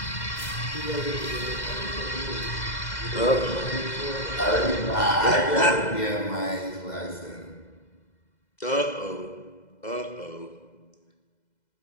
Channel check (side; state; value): right; late; 2.0 ms